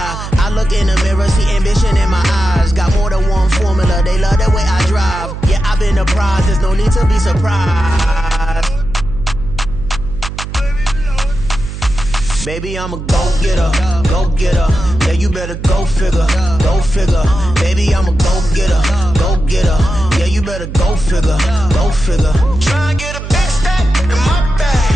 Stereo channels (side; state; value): right; noise; hum, 8 dB below the sound